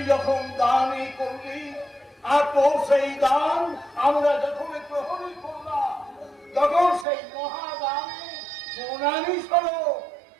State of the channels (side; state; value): left; drops out; at 7.1 s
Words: যখন দানই করলি, আর তোর সেই দান আমরা যখন গ্রহণই করলাম, তখন সেই মহাদানে সোনালি স্বরূপ